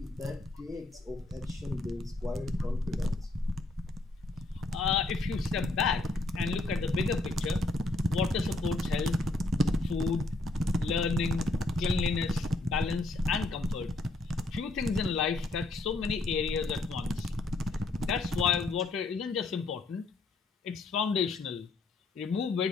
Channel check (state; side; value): quieter; right; 3.0 dB